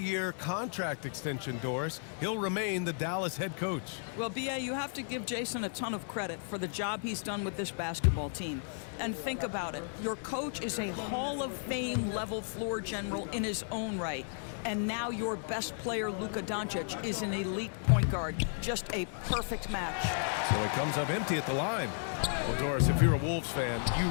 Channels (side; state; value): right; silent; digital silence